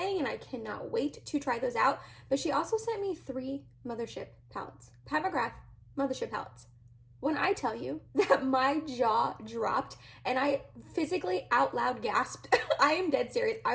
and I cannot wait to try those out. But she also sent me 3 Mothership palettes. Mcgrath Mothership palettes. When I tell you that my jaw dropped and I physically out loud gasped, I am dead serious.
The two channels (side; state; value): both; identical; correlation 1.00